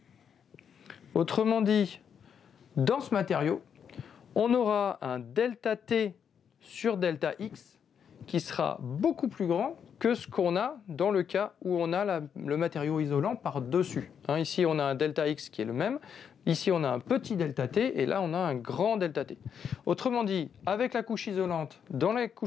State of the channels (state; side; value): quieter; right; 7.7 dB